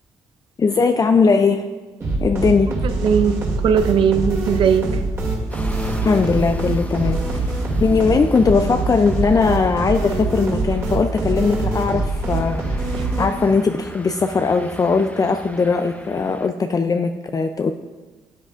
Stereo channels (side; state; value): both; normal; correlation 0.74